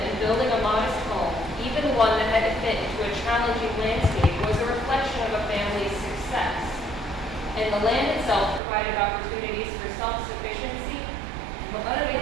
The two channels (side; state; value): left; drops out; at 8.6 s